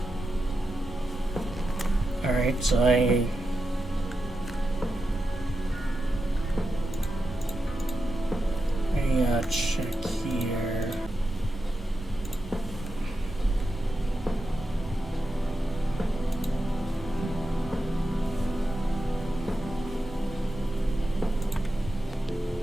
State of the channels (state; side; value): normal; both; correlation 0.89